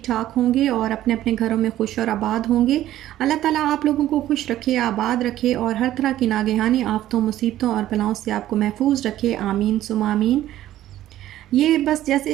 ठाक होंगे और अपने अपने घरों में खुश और आबाद होंगे। अल्लाह ताला आप लोगों को खुश रखे, आबाद रखे और हर तरह की नागहानी आफतों, मुसीबतों और बलाओं से आपको महफूज रखे। आमीन सुम्मा आमीन। ये बस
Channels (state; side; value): quieter; left; 13.4 dB